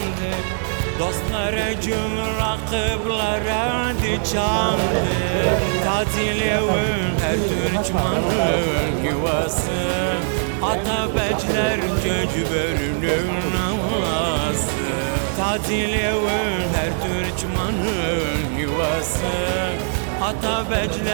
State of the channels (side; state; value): left; silent; digital silence